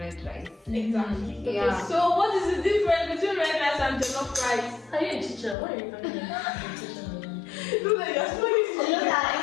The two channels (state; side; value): drops out; right; at 5.6 s